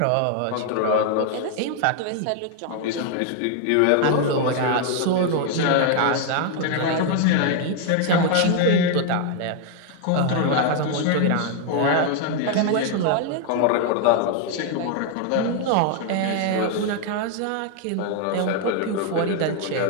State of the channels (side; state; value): both; different; correlation 0.00